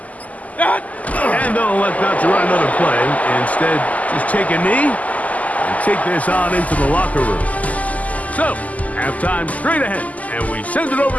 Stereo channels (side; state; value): right; late; 0.075 ms